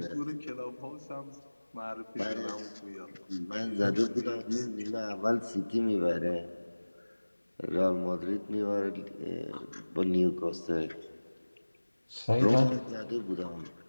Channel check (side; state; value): both; inverted; correlation -1.00